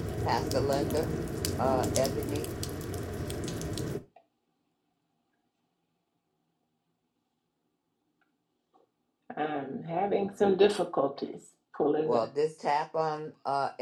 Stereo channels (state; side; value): identical; both; correlation 1.00